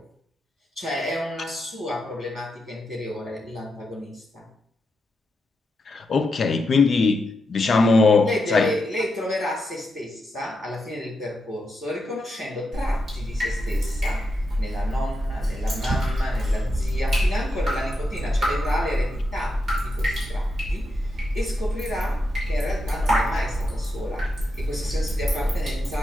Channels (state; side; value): normal; both; correlation 0.86